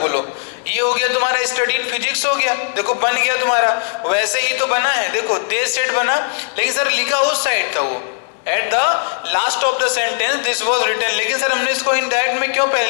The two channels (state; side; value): silent; right; digital silence